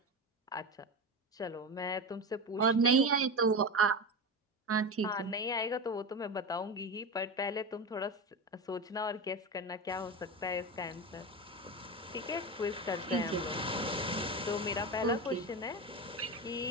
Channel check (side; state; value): both; normal; correlation 0.21